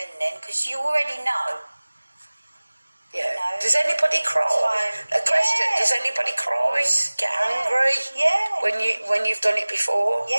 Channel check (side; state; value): both; inverted; correlation -1.00